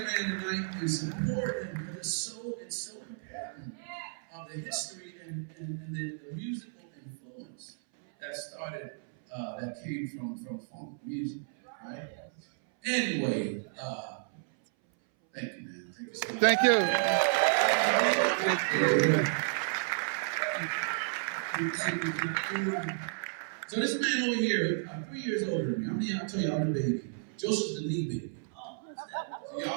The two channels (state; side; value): silent; left; 56 dB below the other